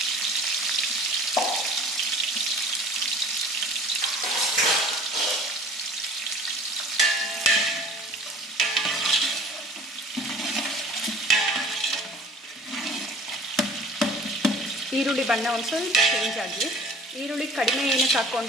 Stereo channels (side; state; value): both; normal; correlation 0.46